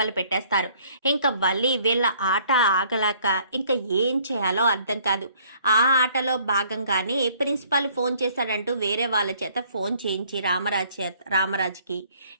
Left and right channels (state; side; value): inverted; both; correlation -0.60